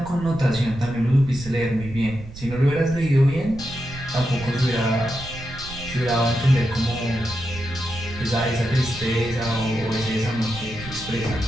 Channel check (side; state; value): right; noise; rumble, 14 dB below the sound